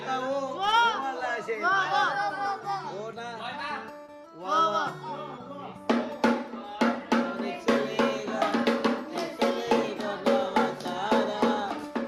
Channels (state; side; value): identical; both; correlation 1.00